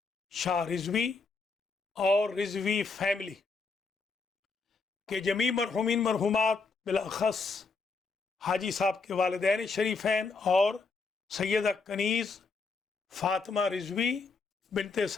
شاہ رضوی اور رضوی فیملی کے جمیع مرحومین مرحومات بالاخص حاجی صاحب کے والدین شریفین اور سیدہ کنیز فاطمہ رضوی بنت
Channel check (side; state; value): right; quieter; 4.3 dB